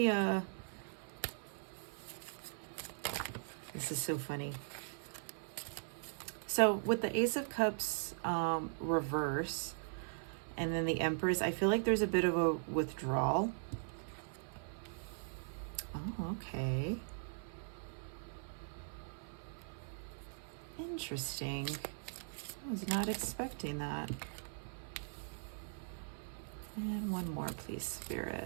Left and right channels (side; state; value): left; silent; 51 dB below the other